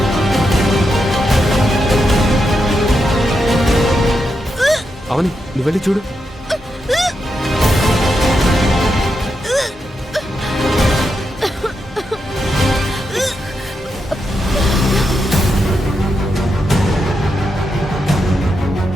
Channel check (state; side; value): normal; both; correlation 0.85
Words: అవని నువ్వు వెళ్ళి చూడు.